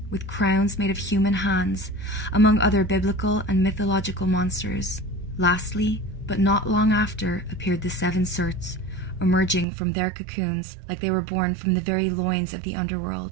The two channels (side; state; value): left; drops out; at 9.7 s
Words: with crowns made of human hands, among other biblical and mythological monsters. Lastly, but not long after, appeared the 7 Surts, emerging from their cocoons like they were born from the very loins of the